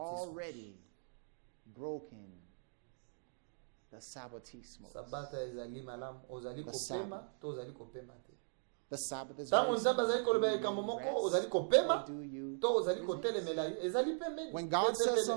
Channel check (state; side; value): silent; left; digital silence